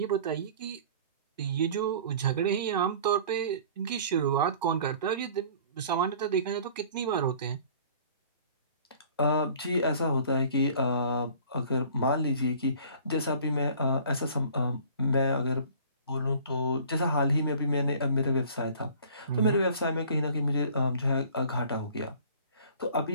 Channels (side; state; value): both; inverted; correlation -0.49